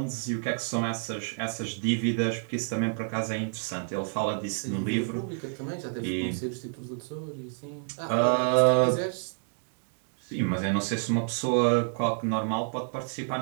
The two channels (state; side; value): silent; left; 59 dB below the other